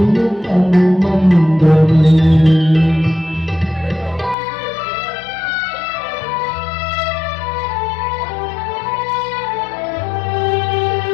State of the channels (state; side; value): drops out; right; at 4.4 s